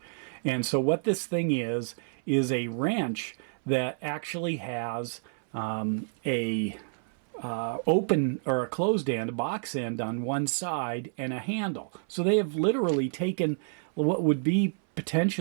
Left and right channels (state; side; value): silent; left; 58 dB below the other